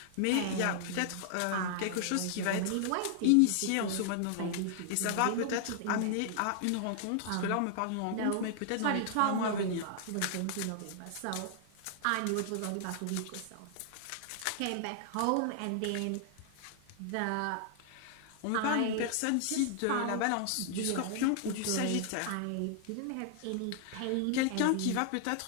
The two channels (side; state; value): both; different; correlation 0.00